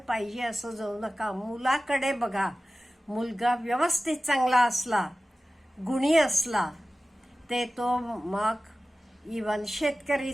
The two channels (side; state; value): both; normal; correlation 0.96